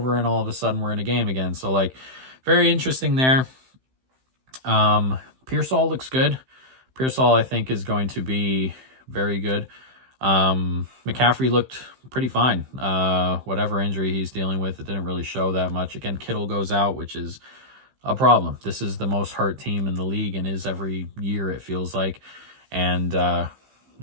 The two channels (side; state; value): left; late; 15 ms